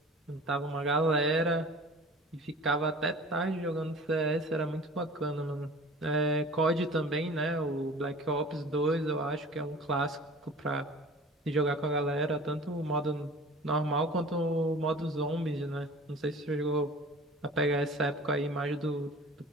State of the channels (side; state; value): both; normal; correlation 0.42